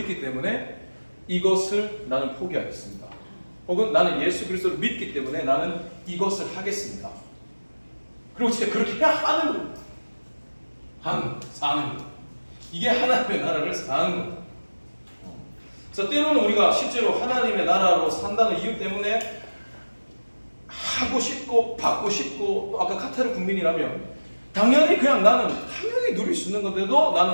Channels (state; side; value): inverted; both; correlation -1.00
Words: 때문에 이것을 나는 포기하겠습니다. 혹은 나는 예수 그리스도를 믿기 때문에 나는 이것을 하겠습니다. 그리고 진짜 그렇게 해야 하는 겁니다. 사는 것. 이게 하나님의 나라를 사는 겁니다. 그래서 때로는 우리가 실제로 하나님의 나라로 산다는 이유 때문에 하고 싶고 받고 싶고 또 아까 카타르 국민이라면 당연히 그냥 나는 당연히 누릴 수 있는 건데도